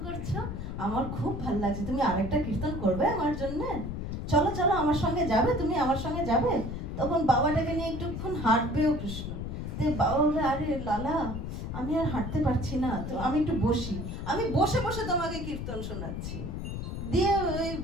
করছো, আমার খুব ভালো লাগছে, তুমি আরেকটা কীর্তন করবে আমার জন্য? চলো চলো আমার সঙ্গে যাবে, তুমি আমার সঙ্গে যাবে। তখন বাবাটাকে নিয়ে একটুক্ষণ হাঁটবেও কৃষ্ণ। তো বাবা বলবে, আরে লালা আমি আর হাঁটতে পারছি না, তো আমি একটু বসি, আমি বসে বসে তোমাকে কীর্তন শোনাচ্ছি। দিয়ে ওই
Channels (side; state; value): left; noise; rumble, 5 dB below the sound